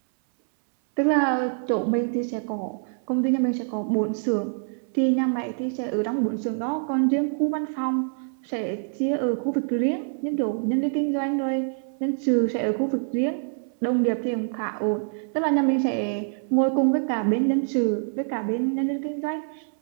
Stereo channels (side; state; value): left; silent; 61 dB below the other